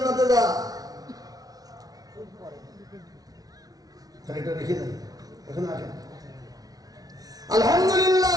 যা। এটা রেখে দেন, এখানে রাখেন। আলহামদুলিল্লাহ।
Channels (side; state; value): left; late; 0.18 ms